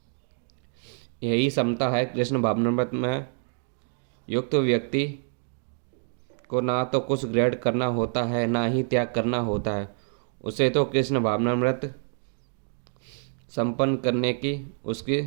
यही समता है। कृष्ण भावनामृत में युक्त व्यक्ति को ना तो कुछ ग्रहण करना होता है ना ही त्याग करना होता है। उसे तो कृष्ण भावनामृत संपन्न करने की उसकी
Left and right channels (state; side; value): silent; left; 60 dB below the other